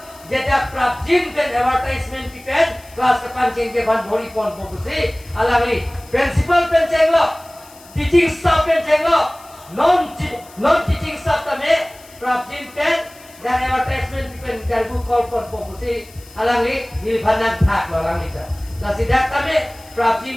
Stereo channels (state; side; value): noise; left; hiss, 23 dB below the sound